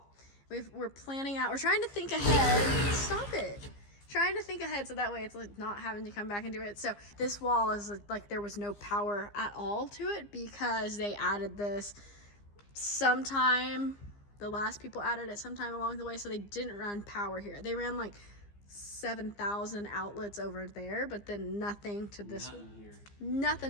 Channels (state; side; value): late; right; 15 ms